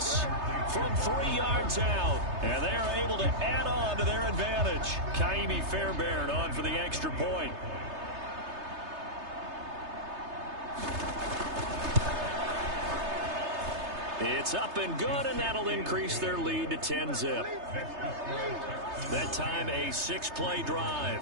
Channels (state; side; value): late; left; 3.3 ms